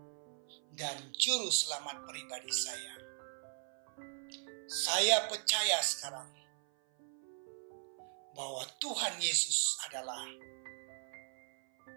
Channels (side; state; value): left; silent; 52 dB below the other